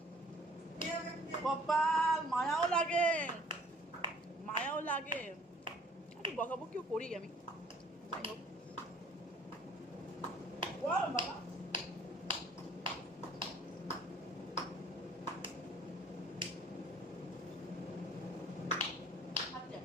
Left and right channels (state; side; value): normal; both; correlation 0.55